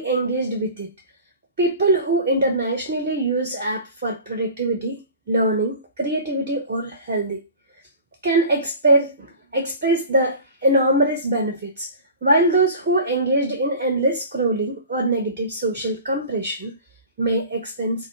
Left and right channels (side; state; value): both; inverted; correlation -0.41